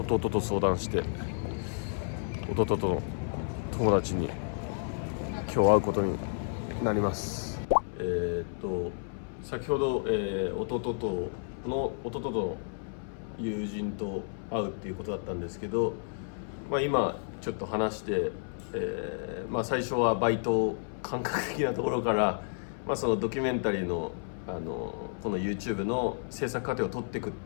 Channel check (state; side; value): silent; right; 57 dB below the other